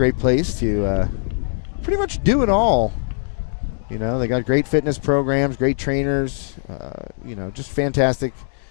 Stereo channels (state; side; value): silent; right; digital silence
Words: place to pretty much do it all. You know, they got great fitness programs, great trainers, you know, just fantastic